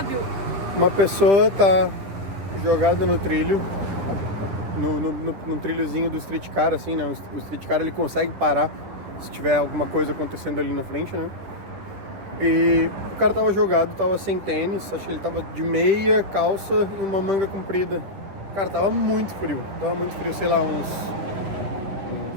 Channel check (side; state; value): left; late; 10 ms